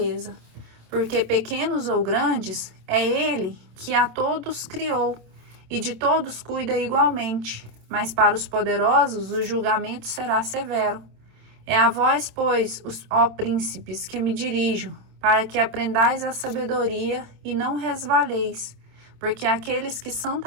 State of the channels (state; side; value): late; left; 27 ms